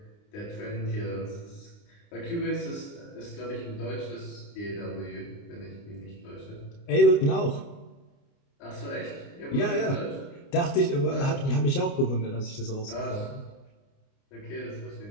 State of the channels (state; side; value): late; right; 29 ms